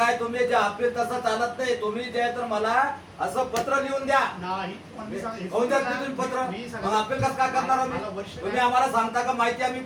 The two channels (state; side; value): identical; both; correlation 1.00